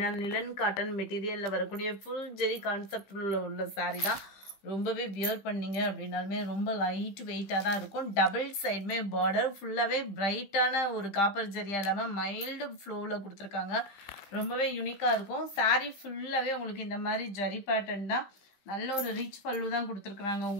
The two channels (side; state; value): right; late; 15 ms